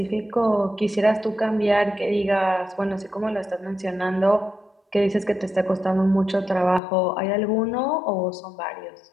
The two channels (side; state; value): right; drops out; at 6.8 s